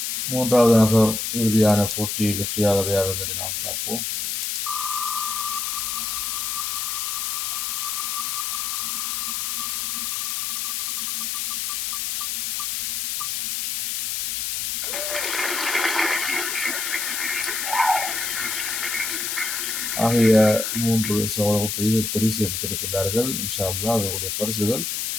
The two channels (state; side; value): noise; left; hiss, 1 dB below the sound